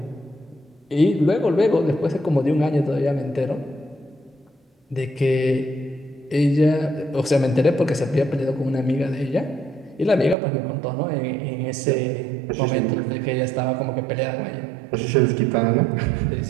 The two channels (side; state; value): left; drops out; at 10.4 s